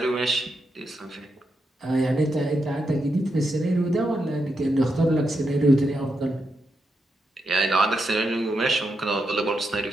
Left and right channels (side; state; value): both; normal; correlation 0.84